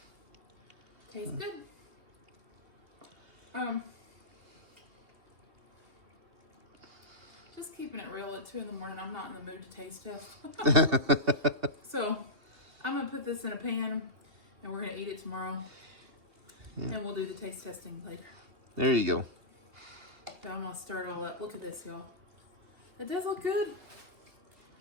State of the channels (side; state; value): left; late; 2.7 ms